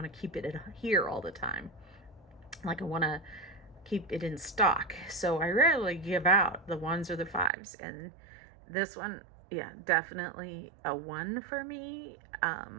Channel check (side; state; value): left; drops out; at 7.5 s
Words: to keep it here all the time. Like I want to keep it in stock. So I rarely give out the 1s or the 5s. And this one, yeah, definitely a 1 for me.